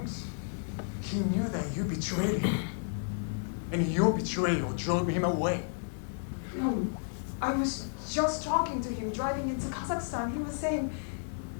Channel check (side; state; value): right; silent; digital silence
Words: He knew that you betrayed him. And your betrayal drove him away. No, I was just talking to him driving into Kazakhstan. He was saying